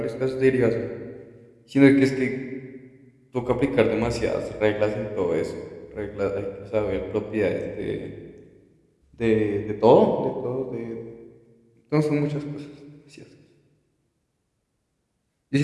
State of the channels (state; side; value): identical; both; correlation 1.00